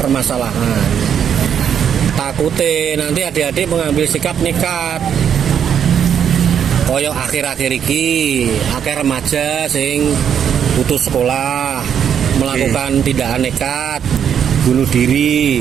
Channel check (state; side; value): quieter; left; 8.4 dB